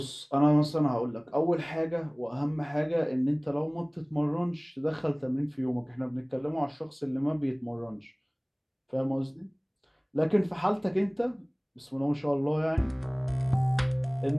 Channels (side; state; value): both; identical; correlation 1.00